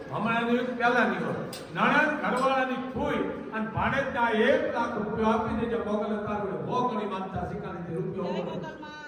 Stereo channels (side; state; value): both; identical; correlation 1.00